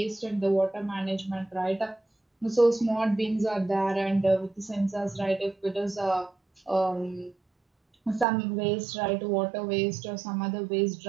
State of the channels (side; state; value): left; drops out; at 8.2 s